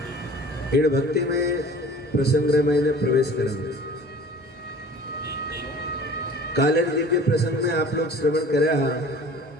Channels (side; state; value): both; normal; correlation 0.45